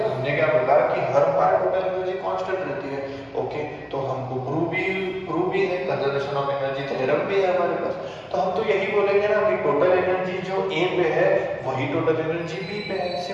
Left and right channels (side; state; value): both; identical; correlation 1.00